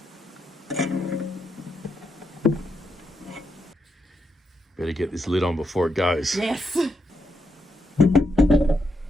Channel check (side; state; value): both; normal; correlation 0.82